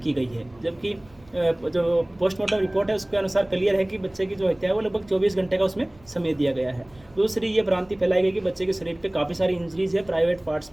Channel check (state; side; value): noise; right; rumble, 28 dB below the sound